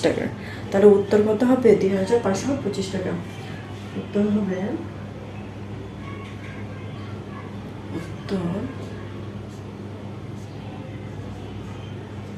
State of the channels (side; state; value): both; identical; correlation 1.00